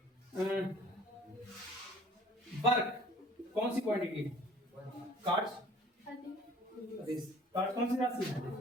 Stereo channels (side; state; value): both; normal; correlation 0.51